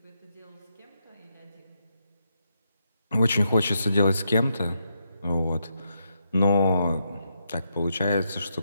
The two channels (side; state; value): both; inverted; correlation -0.81